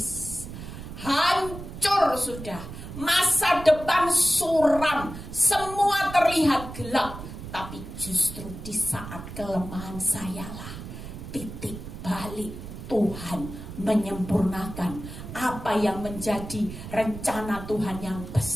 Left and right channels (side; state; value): right; noise; rumble, 11 dB below the sound